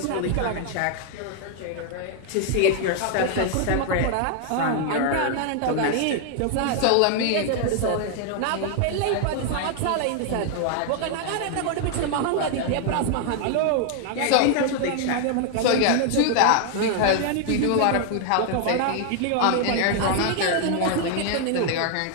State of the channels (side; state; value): both; different; correlation 0.00